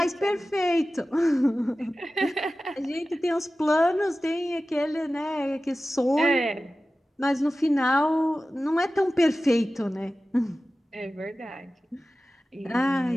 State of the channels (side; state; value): both; normal; correlation 0.95